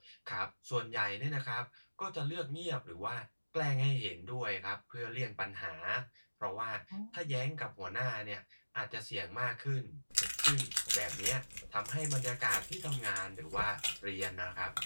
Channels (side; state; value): both; inverted; correlation -1.00